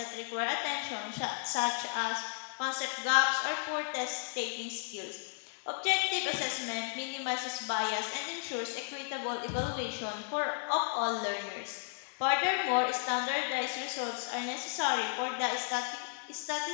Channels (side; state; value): right; silent; 55 dB below the other